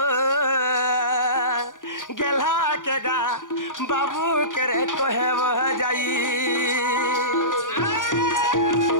গেলা কে গা বাবু কে রে কহেব যাই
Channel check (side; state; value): right; late; 0.88 ms